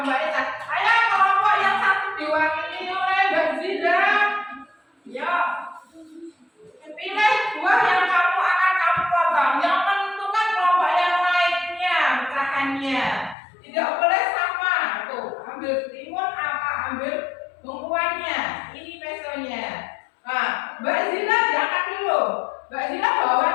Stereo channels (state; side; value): drops out; right; at 13.4 s